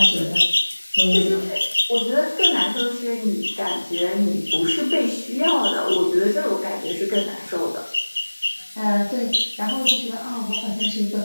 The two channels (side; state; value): both; inverted; correlation -1.00